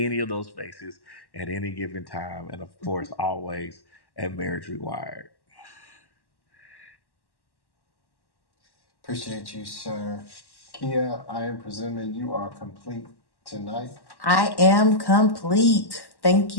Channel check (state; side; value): late; right; 1.1 ms